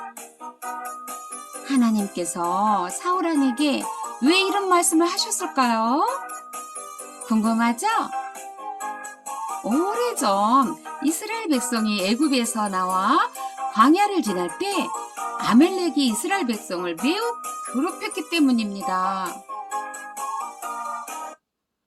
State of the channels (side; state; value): both; identical; correlation 1.00